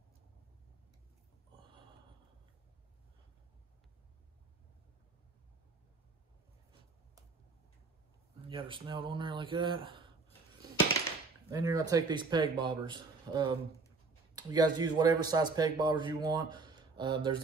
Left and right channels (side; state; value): left; quieter; 4.1 dB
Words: You got her snelled on there like that. Then you're gonna take these peg bobbers. You guys use whatever size peg bobbers you want. There's